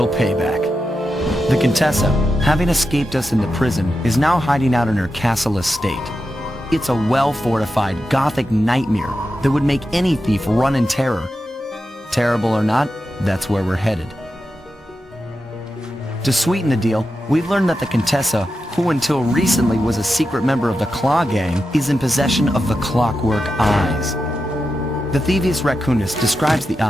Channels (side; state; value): both; normal; correlation 0.89